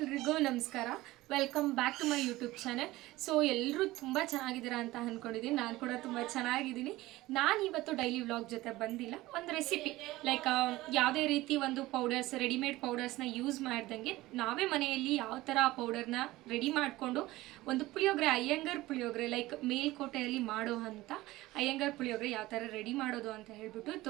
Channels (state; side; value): quieter; left; 18.1 dB